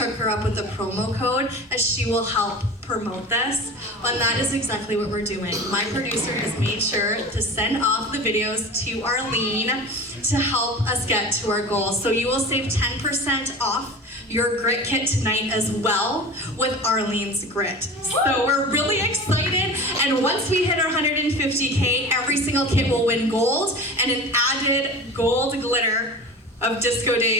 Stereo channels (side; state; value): both; normal; correlation 0.34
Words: her up with a promo code, as she will help promote this. And that is exactly what we're doing. My producer has made sure to send off the videos to Arlene to help us get to our goals. So you will save 10% off your grit kit tonight as well with Arlene's grit. So we're really excited, and once we hit our 150K, every single kit will win gold, and an added gold glitter of Disco